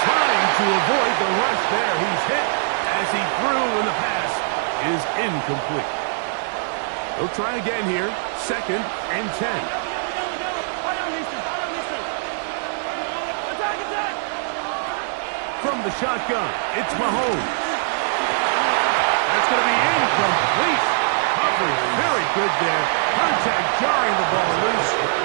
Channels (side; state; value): left; silent; digital silence